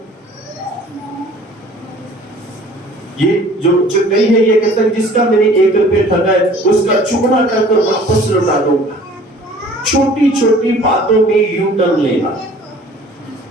ये जो कहीं है, ये कहता है जिसका मैंने 1 रुपया ठगा है उसका चुगला कर वापस लौटा दूंगा। छोटी छोटी बातों में यू टर्न लेना।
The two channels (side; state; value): both; normal; correlation 0.50